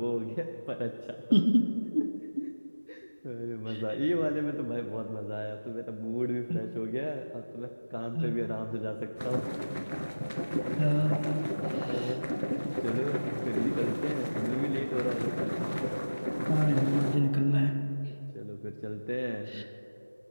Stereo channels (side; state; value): both; inverted; correlation -1.00